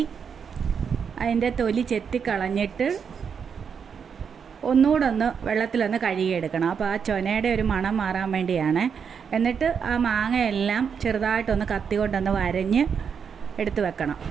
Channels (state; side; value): quieter; left; 6.8 dB